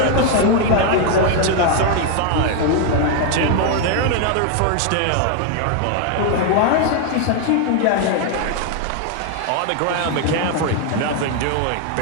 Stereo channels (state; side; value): different; both; correlation 0.01